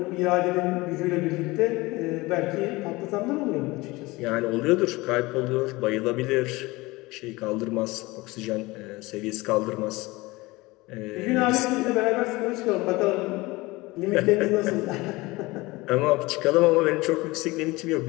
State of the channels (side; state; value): right; quieter; 21.7 dB